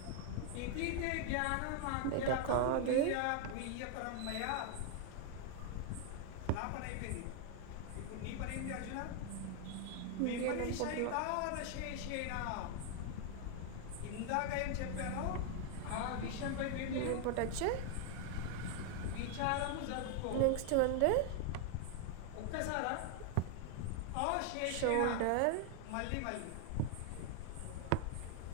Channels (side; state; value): both; different; correlation 0.00